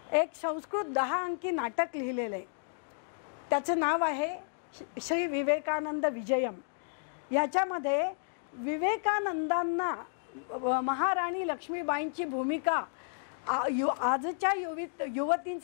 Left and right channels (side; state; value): right; silent; digital silence